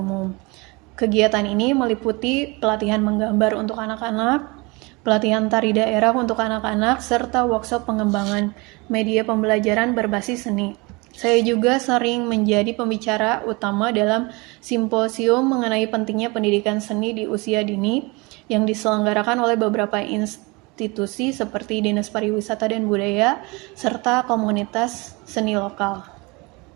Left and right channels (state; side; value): quieter; left; 26.2 dB